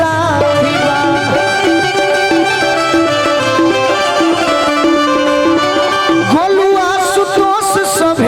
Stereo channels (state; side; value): identical; both; correlation 1.00